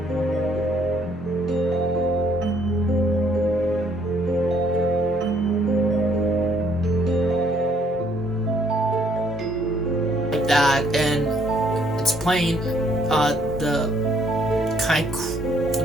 like that, and it's playing the kind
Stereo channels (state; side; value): normal; both; correlation 0.66